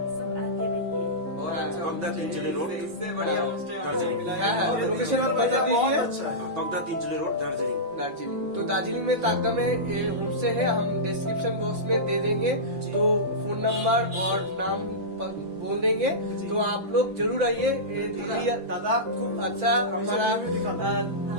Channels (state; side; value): late; left; 5.9 ms